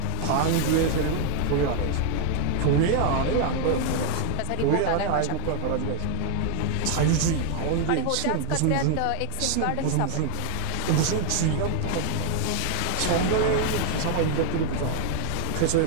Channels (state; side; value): different; both; correlation 0.01